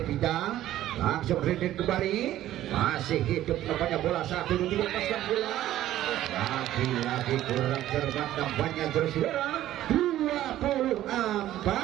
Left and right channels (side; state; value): left; quieter; 13.5 dB